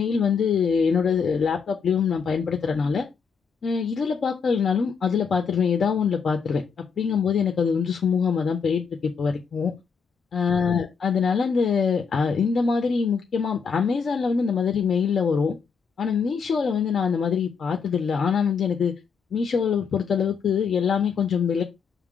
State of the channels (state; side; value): quieter; right; 5.9 dB